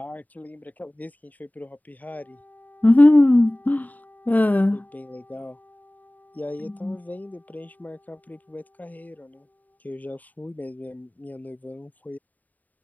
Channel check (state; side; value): late; right; 0.079 ms